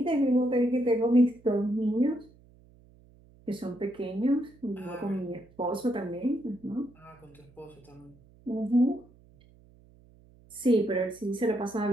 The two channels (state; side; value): noise; right; hum, 27 dB below the sound